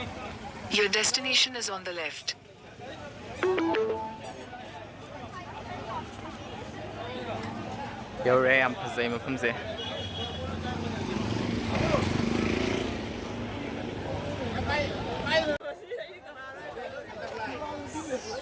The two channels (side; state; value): both; identical; correlation 1.00